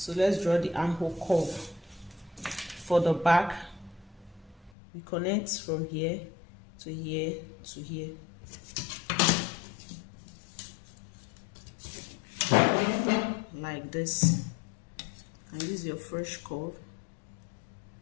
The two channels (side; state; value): right; drops out; at 4.7 s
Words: let's draw the armhole curve. For the back, we connect from here to here to here. Like this. And use your fresh curve.